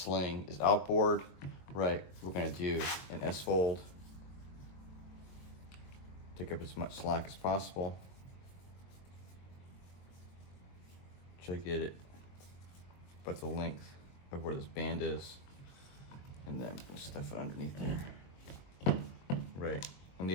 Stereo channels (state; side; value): late; right; 22 ms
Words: is outboard, right? We're going to do an S-fold. Take up as much slack as possible. Try to get it about the length of where this band is, and then we'll stuff it underneath there. Right. And